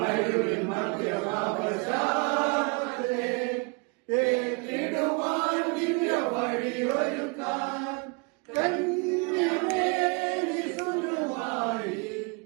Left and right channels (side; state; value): left; quieter; 31.4 dB